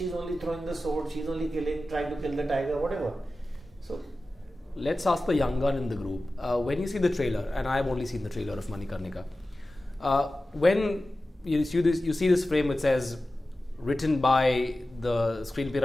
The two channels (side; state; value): both; normal; correlation 0.95